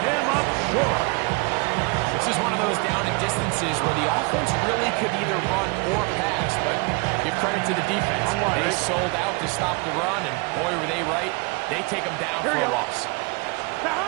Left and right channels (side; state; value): left; quieter; 28.2 dB